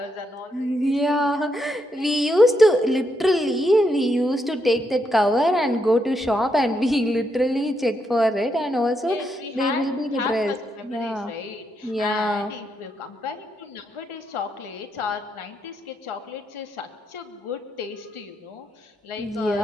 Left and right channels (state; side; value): normal; both; correlation 0.80